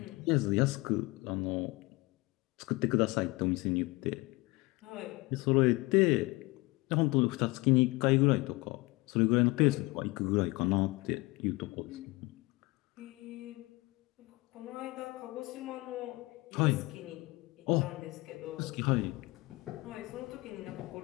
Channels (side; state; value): right; quieter; 23.1 dB